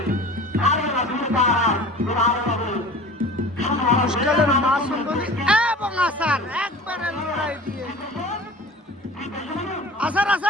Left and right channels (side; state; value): both; normal; correlation 0.41